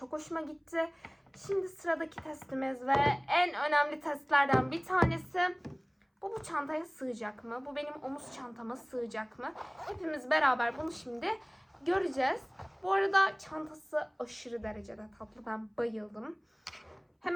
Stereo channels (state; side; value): identical; both; correlation 1.00